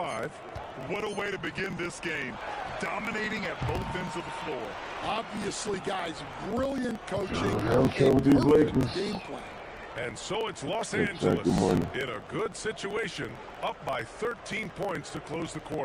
What a way to begin this game. Dominating at both ends of the floor. Obviously, guys, brilliant coaching. I'm sure with these Lakers. Game plan. And so it's Los Good Angeles morning. in a good situation, up by 13 points to close the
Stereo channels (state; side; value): identical; both; correlation 1.00